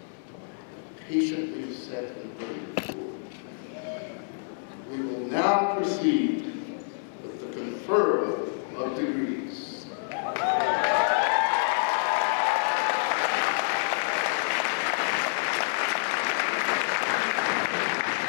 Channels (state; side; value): silent; right; 59 dB below the other